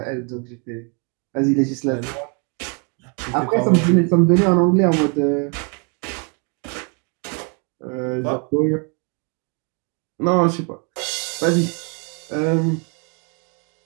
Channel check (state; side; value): quieter; left; 36.3 dB